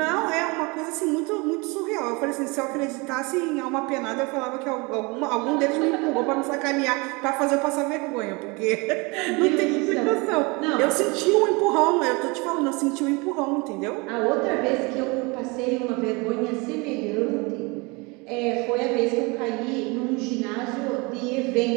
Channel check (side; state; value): left; quieter; 27.3 dB